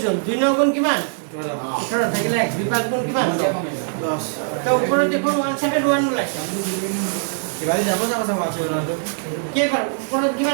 হ'ল 2 9 গুণ কিমান 18 থাকিলে 1 2 5 গুণ কিমান 10 তো ওপৰত দেখোন 171 ওলাইছে কিবালি যাব যাব চাবা আছে ওলাটো কেইবাৰ ওপৰত কিমান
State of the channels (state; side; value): silent; left; 65 dB below the other